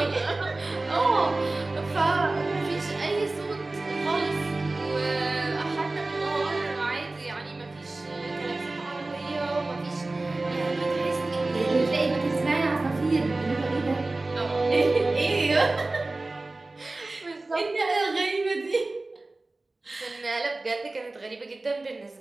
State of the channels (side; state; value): left; quieter; 3.1 dB